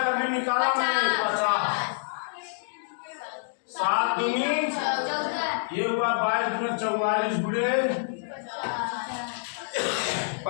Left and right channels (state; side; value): silent; right; digital silence